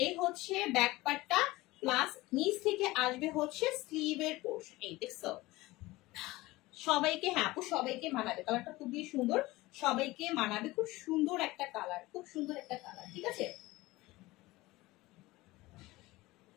হচ্ছে ব্যাক পার্টটা, প্লাস নিচ থেকে আসবে হচ্ছে স্লিভের পোর্শন। এই দেখছো, সবাইকে হ্যাঁ আপু সবাইকে মানাবে, কালারটা খুবই সুন্দর, সবাইকে মানাবে, খুব সুন্দর একটা কালার, খুব সুন্দর একটা কালার, ঠিক আছে?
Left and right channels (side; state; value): right; quieter; 19.7 dB